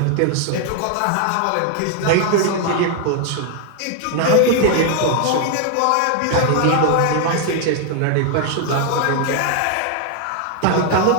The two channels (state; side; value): different; both; correlation 0.00